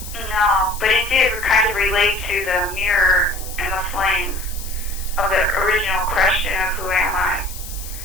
No, but it did kind of relate to the mirror and the flame of the original question of who am I?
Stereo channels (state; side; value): noise; left; hiss, 13 dB below the sound